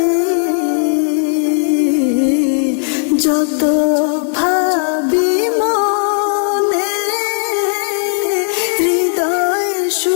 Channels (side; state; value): right; silent; 60 dB below the other